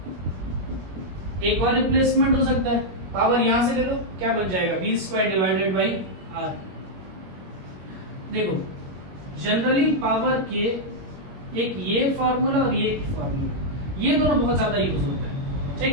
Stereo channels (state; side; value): late; left; 21 ms